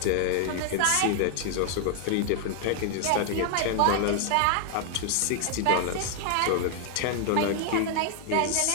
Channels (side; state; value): both; different; correlation 0.00